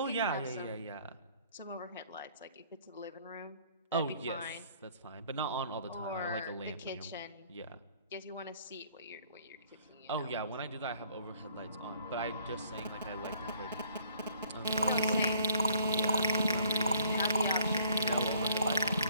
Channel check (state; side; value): inverted; both; correlation -0.60